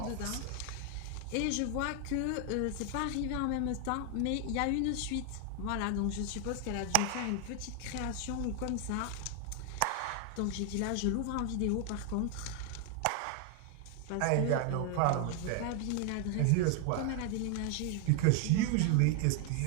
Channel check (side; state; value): both; different; correlation 0.00